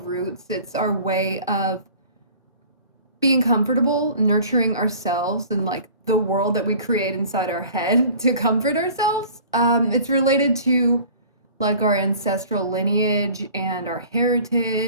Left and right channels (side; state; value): both; inverted; correlation -0.46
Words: It's our way of being comfortable, nurturing ourselves and like the world that we create inside our head to comfort ourselves. It's related to like our ancestral lineage and our